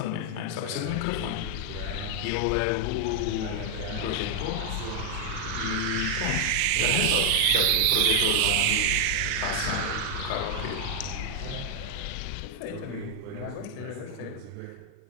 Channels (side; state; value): both; different; correlation 0.00